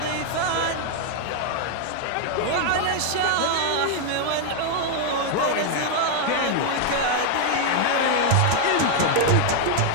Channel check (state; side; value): different; both; correlation 0.00